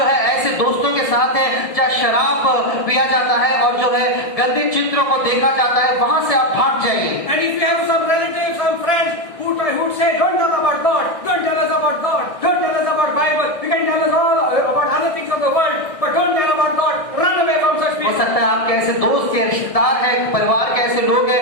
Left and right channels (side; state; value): right; late; 1.6 ms